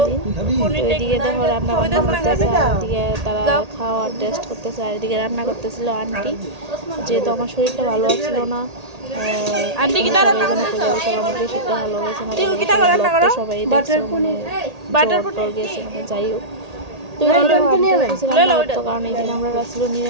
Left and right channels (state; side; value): late; left; 1.8 ms